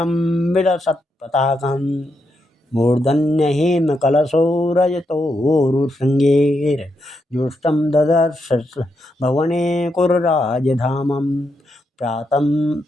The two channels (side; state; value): both; normal; correlation 0.82